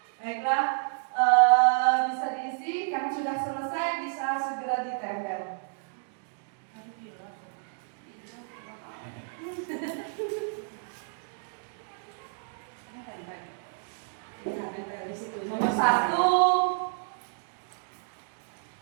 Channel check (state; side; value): silent; left; digital silence